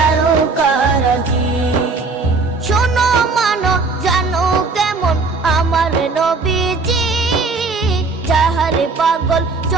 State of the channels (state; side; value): quieter; left; 4.0 dB